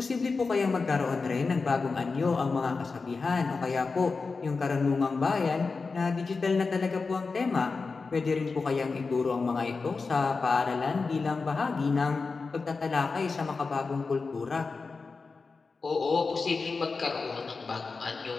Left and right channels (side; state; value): right; quieter; 4.3 dB